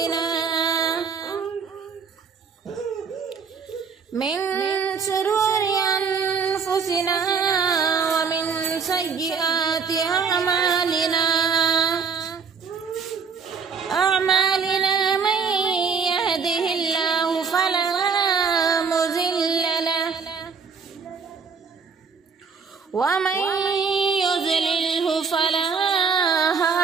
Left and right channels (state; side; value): quieter; left; 5.7 dB